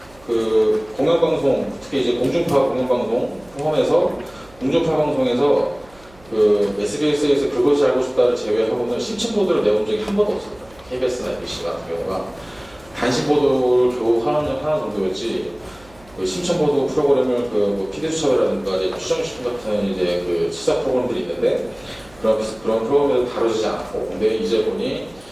공영방송, 특히 이제 공중파 공영방송 포함해서 공중파 방송에서 SBS에서 그것이 알고 싶다를 제외하고는 심층 보도를 내온 적이 한 번도 없었어요. KBS나 MBC 같은 경우가 단신 보도를 겨우 하나 정도였지 심층 보도 프로그램을 PD수첩이라든가 추정식품 같은 이제 시사 프로그램들이 있는데 그런 프로그램에서 다루지 않고, 근데 이제 보니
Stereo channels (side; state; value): right; noise; hum, 26 dB below the sound